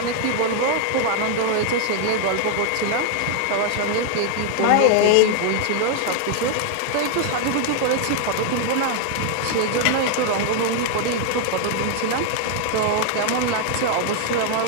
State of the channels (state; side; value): different; both; correlation 0.00